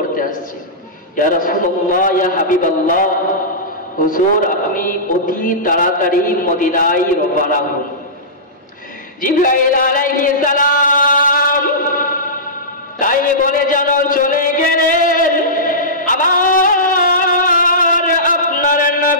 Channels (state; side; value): normal; both; correlation -0.18